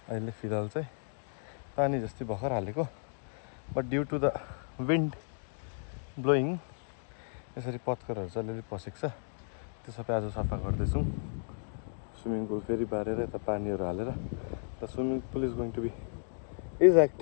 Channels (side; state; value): right; silent; digital silence